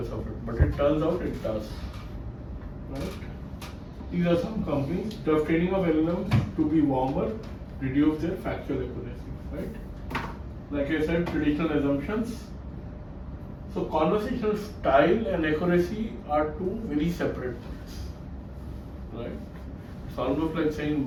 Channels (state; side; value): identical; both; correlation 1.00